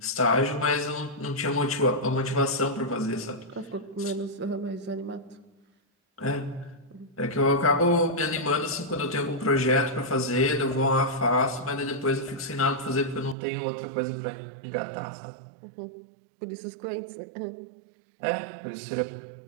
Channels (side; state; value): left; drops out; at 13.4 s